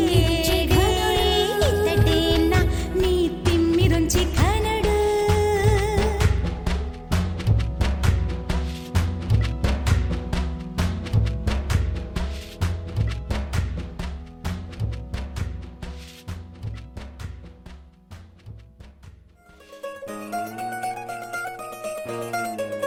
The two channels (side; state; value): both; identical; correlation 1.00